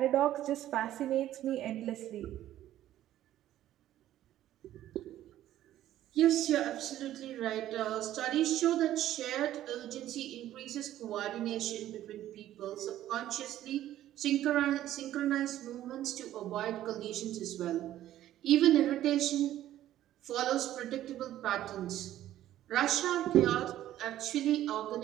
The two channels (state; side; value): quieter; left; 13.0 dB